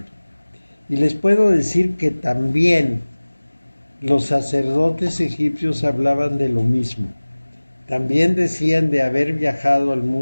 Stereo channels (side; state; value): both; inverted; correlation -1.00